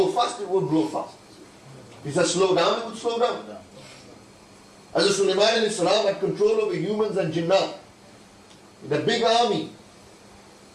fast, it would blow fast. If he said slow down, it would slow down. Hazrat Sulaiman alayhi salam had control over humans and jinnat. The big army.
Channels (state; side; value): identical; both; correlation 1.00